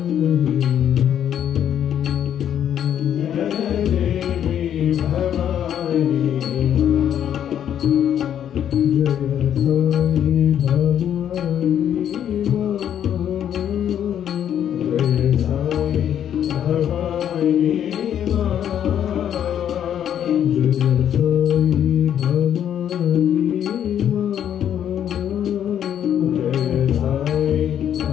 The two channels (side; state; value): right; quieter; 9.8 dB